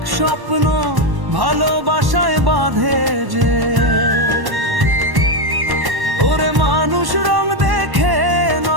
স্বপ্ন ভালোবাসায় বাঁধে যে। ওরে মানুষ রং দেখে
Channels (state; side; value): late; left; 1.1 ms